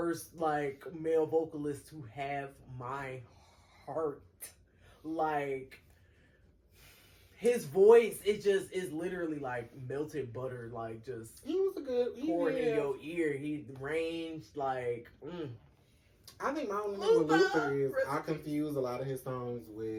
like male vocalist to have my heart. Like his voice, it just is literally like melted butter, like just He was a good. pouring in your ear. He ranged like. I think my only thing with Luther is Luther! I confuse a lot of his songs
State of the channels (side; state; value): both; identical; correlation 1.00